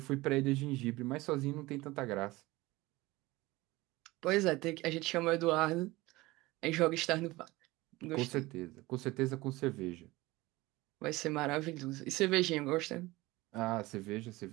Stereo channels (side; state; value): left; quieter; 20.3 dB